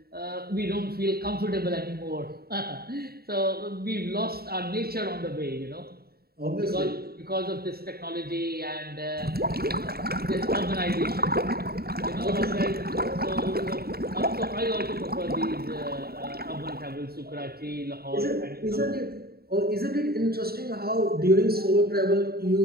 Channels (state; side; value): late; left; 0.45 ms